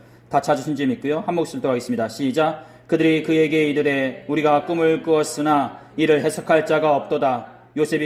다 찾으신 줄 믿고요. 한 목소리로 하겠습니다. 시작. 그들이 그에게 이르되 우리가 꿈을 꾸었으나 이를 해석할 자가 없도다.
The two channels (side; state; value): both; identical; correlation 1.00